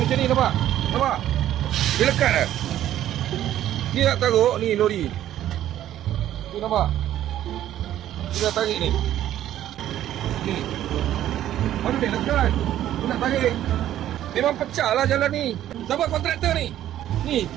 macam ni nampak? Nampak? Boleh lekat tak? Ni nak taruh ni lori. Ni nampak? Dia dah tarik ni. Ni. Mana boleh lekat? Dia nak tarik. Memang pecah lah jalan ni. Siapa kontraktor ni? Ni,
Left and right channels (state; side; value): quieter; left; 12.2 dB